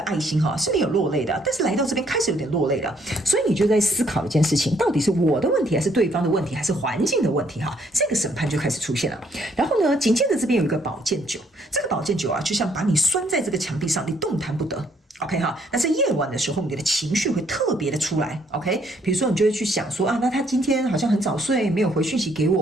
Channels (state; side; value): normal; both; correlation 0.67